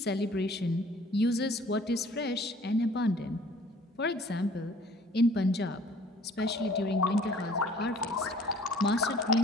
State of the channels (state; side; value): normal; both; correlation 0.54